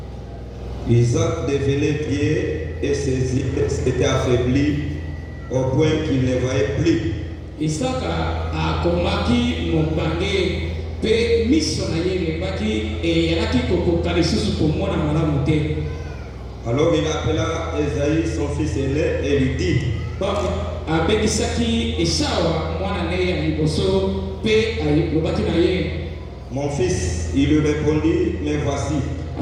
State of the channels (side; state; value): both; identical; correlation 1.00